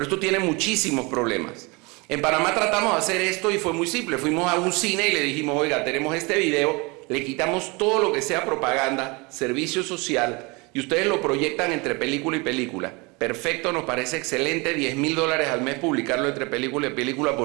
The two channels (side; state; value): left; quieter; 27.2 dB